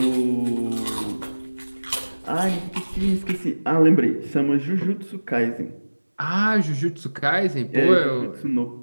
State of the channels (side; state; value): both; inverted; correlation -1.00